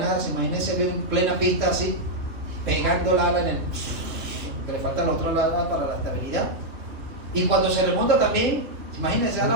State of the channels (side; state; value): left; late; 2.8 ms